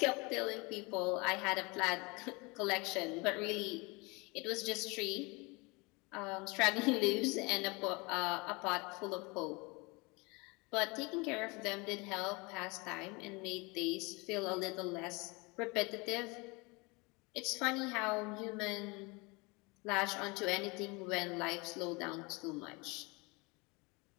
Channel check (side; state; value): right; quieter; 27.1 dB